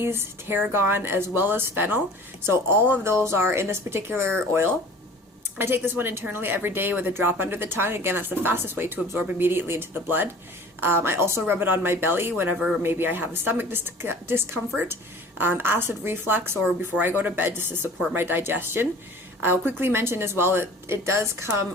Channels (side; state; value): both; normal; correlation 0.45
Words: tarragon, as well as fennel. So all of those are in this particular oil. I take this one internally every day with a drop under the tongue. Again, that's the fastest way to absorb immediately into the blood. I also rub it on my belly whenever maybe I have a stomach discomfort, acid reflux, or before I go to bed just to support my digestion. I'll quickly mention as well that it does come